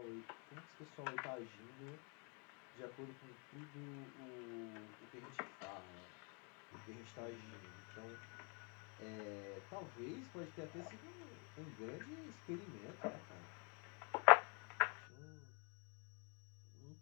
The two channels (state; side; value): quieter; right; 35.2 dB